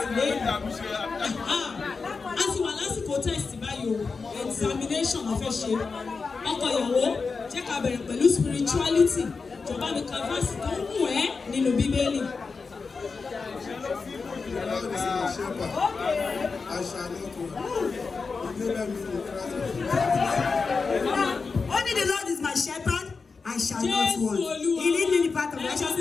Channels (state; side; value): quieter; right; 4.6 dB